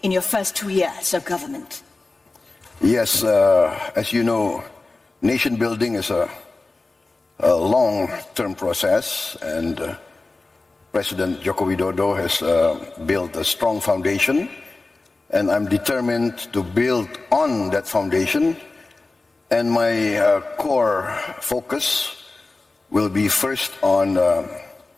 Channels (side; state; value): right; quieter; 3.4 dB